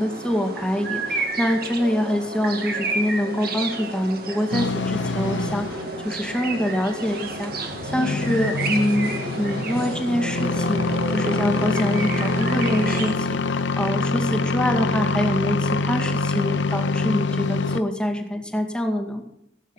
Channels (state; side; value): normal; both; correlation 0.68